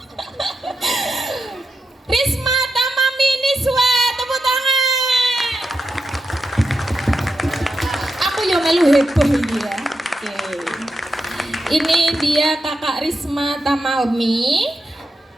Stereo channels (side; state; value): both; normal; correlation 0.87